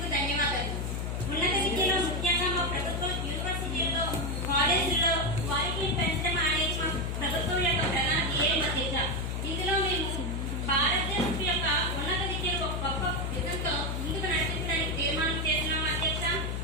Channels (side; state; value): left; noise; hum, 2 dB below the sound